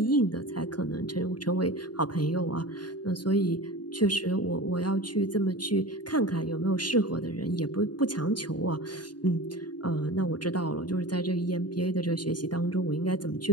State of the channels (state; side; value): late; right; 0.70 ms